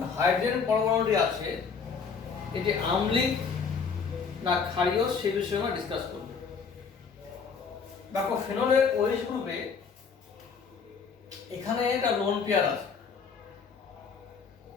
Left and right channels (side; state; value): right; quieter; 5.7 dB